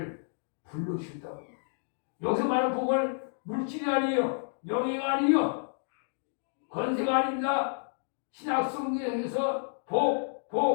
불러주신다고. 여기서 말하는 복은 물질이 아니에요. 명예가 아니에요. 권세가 아닙니다. 신약성경에서 복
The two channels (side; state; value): right; silent; digital silence